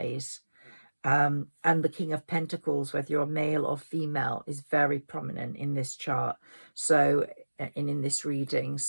And the King of Pentacles, whether you're male or female, is very prominent in this chart. So, in this reading,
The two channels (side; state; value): both; inverted; correlation -1.00